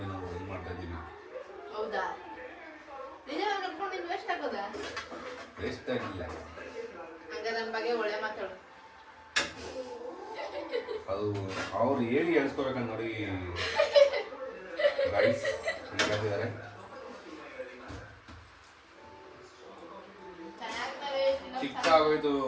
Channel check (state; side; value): identical; both; correlation 1.00